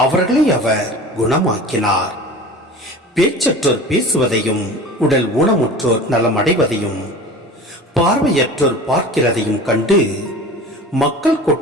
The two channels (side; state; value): both; normal; correlation 0.37